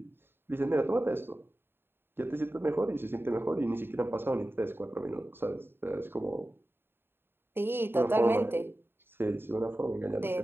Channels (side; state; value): left; late; 0.11 ms